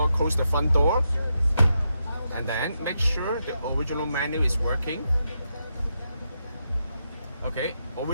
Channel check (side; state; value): both; inverted; correlation -0.84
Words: close the front door, and then make sure the original menu is working. Okay,